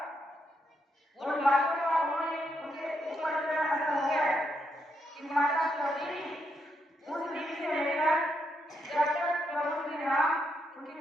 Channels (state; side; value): normal; both; correlation 0.79